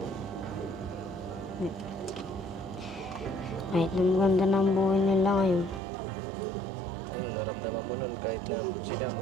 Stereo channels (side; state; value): left; drops out; at 5.8 s